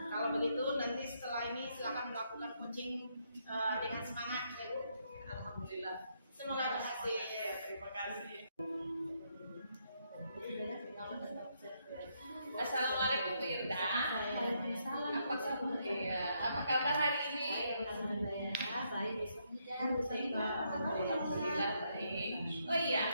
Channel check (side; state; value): both; inverted; correlation -0.76